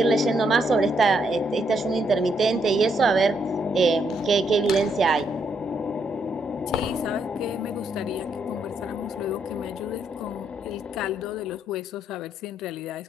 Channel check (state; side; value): normal; both; correlation 0.75